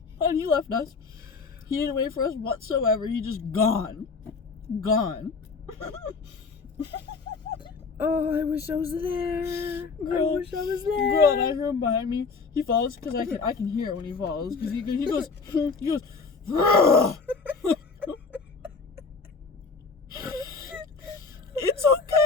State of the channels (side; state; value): right; quieter; 4.7 dB